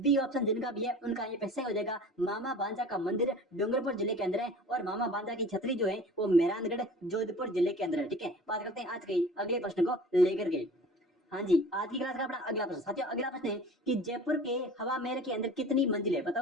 ऑप्शन जिनका भी है उनका ये सही हो जाएगा। मामा भांजा का मंदिर डूंगरपुर जिले के अंदर है और मामा भांजा की छतरी जो है वो मेहरानगढ़ जोधपुर जिले के अंदर है। ठीक है, बात करते हैं आज के अगले प्रश्न को लेकर के। हाँ जी, आज की क्लास का अपना अगला प्रश्न साथियों, अगला प्रश्न है कि जयपुर के हवा महल के अंदर कितनी मंजिल है?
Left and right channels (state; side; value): normal; both; correlation 0.42